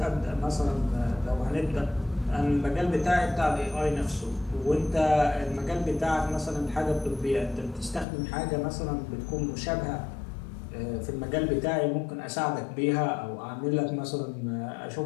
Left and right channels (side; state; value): right; drops out; at 8.1 s